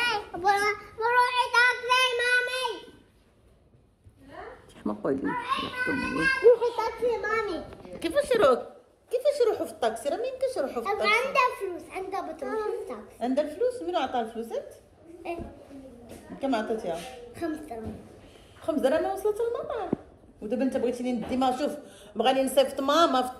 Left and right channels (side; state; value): both; identical; correlation 1.00